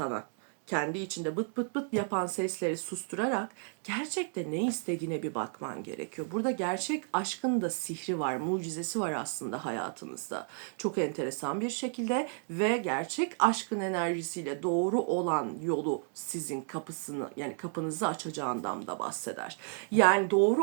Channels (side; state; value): left; silent; 56 dB below the other